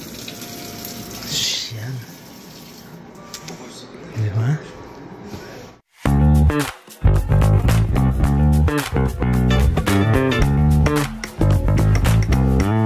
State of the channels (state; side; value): identical; both; correlation 1.00